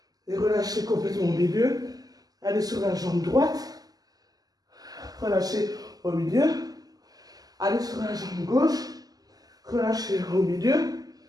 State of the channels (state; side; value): late; left; 0.18 ms